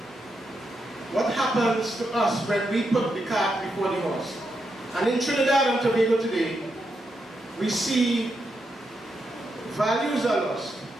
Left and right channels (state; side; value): normal; both; correlation 0.83